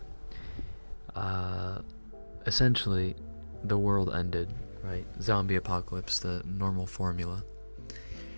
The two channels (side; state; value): both; inverted; correlation -1.00